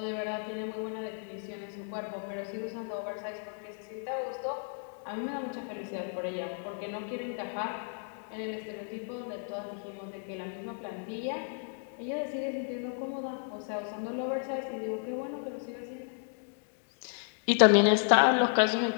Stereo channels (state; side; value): silent; right; 56 dB below the other